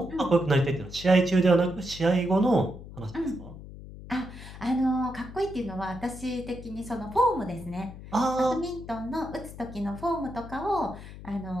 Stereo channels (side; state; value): left; noise; hum, 14 dB below the sound